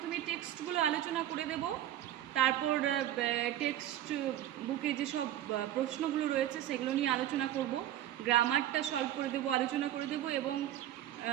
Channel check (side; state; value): left; quieter; 12.5 dB